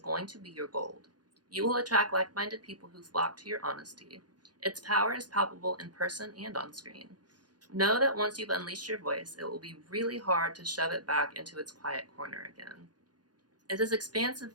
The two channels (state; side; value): late; left; 0.69 ms